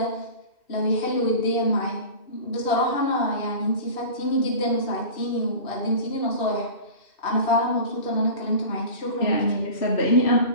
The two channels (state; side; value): late; right; 2.6 ms